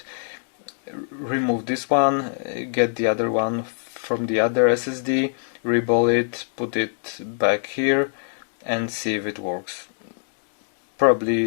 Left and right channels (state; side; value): silent; right; digital silence